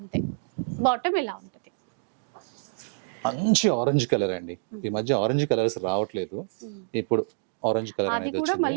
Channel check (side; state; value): left; silent; digital silence